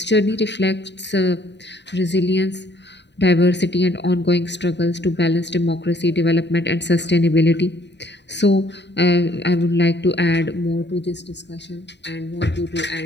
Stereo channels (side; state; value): right; late; 0.51 ms